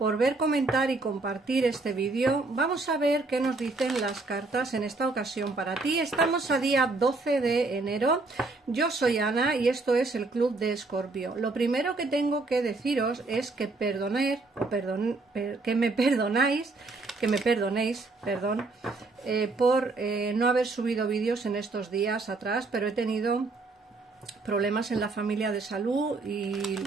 ver, comentar y compartir este vídeo. Vamos a ver qué nos dicen las cartas en esta ocasión para ti. Estamos a día 12 de enero. Yo soy Ana y esto es el Club de Escorpio. Lo primero que tengo que deciros es que me perdonéis, por no haber subido vídeos en estos días atrás, pero he tenido problemas en la familia de salud y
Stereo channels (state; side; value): quieter; left; 3.5 dB